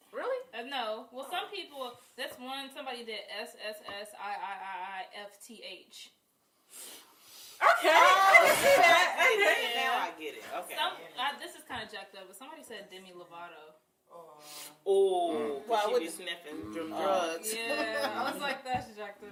Really? No, know. Well, some people, that's one, somebody did SSSIIIIFTH. Okay. Now I get it. Okay. This is kind of jacked up, but somebody said Demi Lovato. Oh, Why she would be sniffing drugs. Yeah, I was like, that's jacked up.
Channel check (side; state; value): both; identical; correlation 1.00